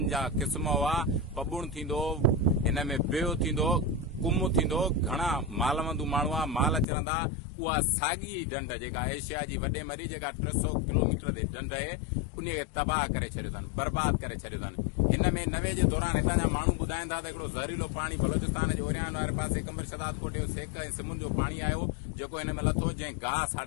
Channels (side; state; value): right; drops out; at 6.9 s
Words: जा क़िस्म हुआ। पबुण थींदो, हिन में बियो थींदो, कुम थींदो। घणा मालवंदू माण्हू आहे, माल चरंदा। उहा साॻी ढंढ जेका एशिया जी वॾे में वॾी जेका 300 किलोमीटर ते ढंढ आहे, उन खे तबाह करे छॾियो अथनि, बर्बाद करे छॾियो अथनि। हिन में 90 जे दौरान हितां जा माण्हू ॿुधाइनि था त हिकिड़ो ज़हरीलो पाणी बलोचिस्तान जे ओरियान वारे पासे कंबर शदाद कोटे जो सेक ऐं सिमुन जो पाणी आयो, जेको हिन में लथो, जंहिं गाह